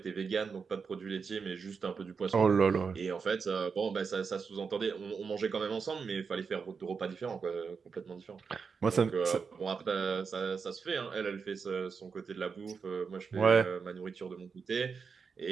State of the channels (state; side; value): quieter; left; 5.5 dB